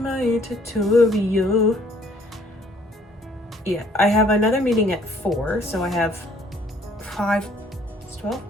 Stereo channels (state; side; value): normal; both; correlation 0.61